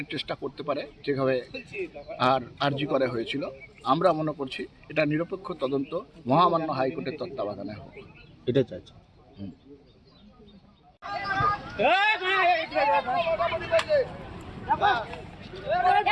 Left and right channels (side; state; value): both; identical; correlation 1.00